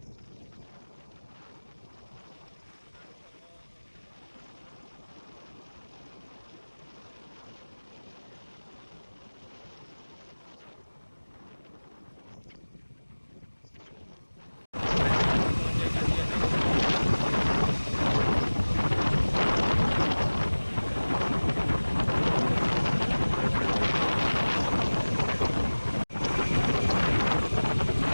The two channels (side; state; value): both; inverted; correlation -1.00